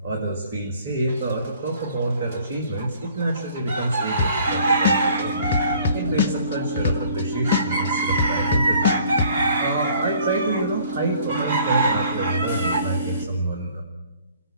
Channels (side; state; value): both; inverted; correlation -0.56